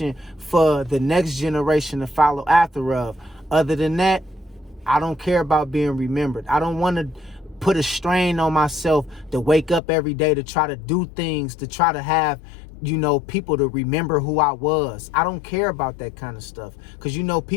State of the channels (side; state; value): right; drops out; at 9.8 s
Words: for the next generation to follow after of. Other than that, I don't care about being remembered. I don't want to put a strain on myself to wake up every day to try to do things, to try to have, people to remember who I was. I don't care about that kind of stuff. Because,